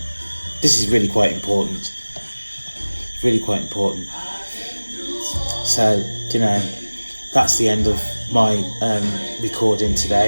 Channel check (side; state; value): both; inverted; correlation -1.00